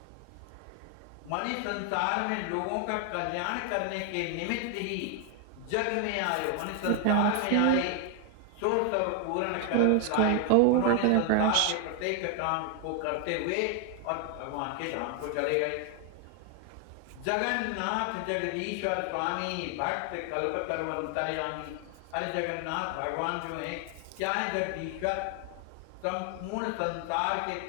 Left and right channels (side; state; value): both; different; correlation 0.00